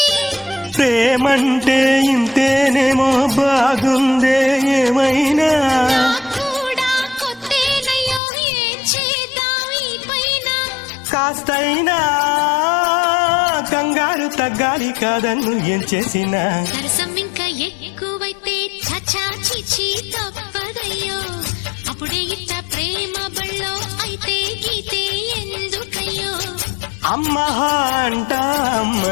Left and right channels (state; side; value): drops out; right; at 8.2 s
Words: ప్రేమంటే ఇంతేనేమో బాగుందే ఏమైనా, కాస్తైనా కంగారు తగ్గాలి కాదన్ను ఏం చేసినా. సరసం ఇంకా ఎక్కువైతే చచా చిచి తప్పదయ్యో, అప్పుడే ఇట్ట ప్రేమ బళ్ళో అయితే గీతే ఎందుకయ్యో. అమ్మహా అంట